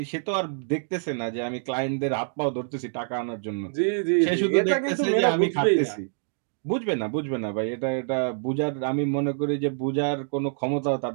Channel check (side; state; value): left; silent; digital silence